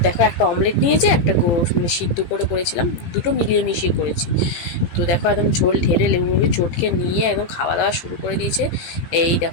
দেখো একটা অমলেট নিয়েছে, একটা মানে সিদ্ধ করে করেছিলাম, দুটো মিলিয়ে মিশিয়ে করেছি। তো দেখো একদম ঝোল ঢেলে লেবু চটকে নিয়ে একদম খাওয়া দাওয়া শুরু করে দিয়েছে। এই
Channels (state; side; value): late; right; 17 ms